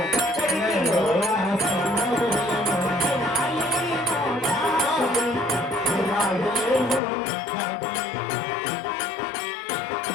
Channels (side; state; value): right; drops out; at 7.0 s